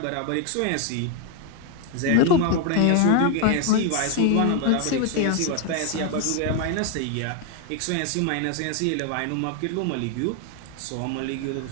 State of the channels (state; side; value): different; both; correlation 0.01